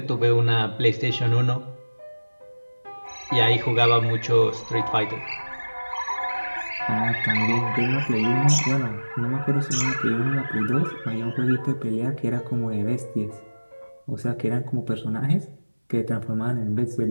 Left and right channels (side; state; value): both; inverted; correlation -1.00